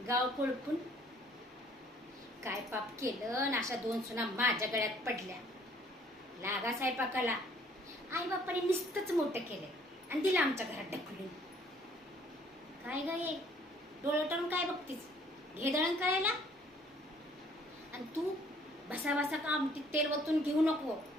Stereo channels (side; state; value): both; normal; correlation 0.59